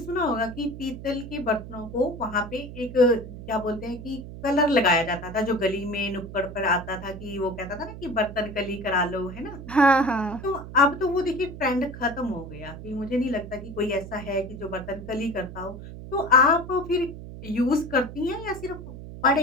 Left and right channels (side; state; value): right; noise; hum, 12 dB below the sound